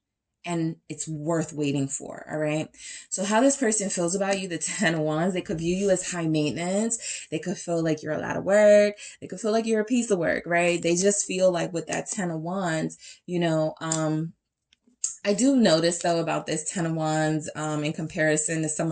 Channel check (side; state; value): both; identical; correlation 1.00